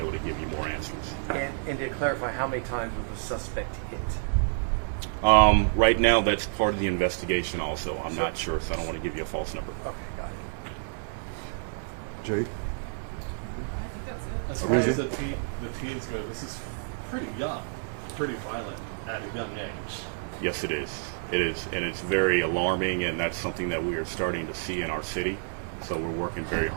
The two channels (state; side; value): silent; left; 59 dB below the other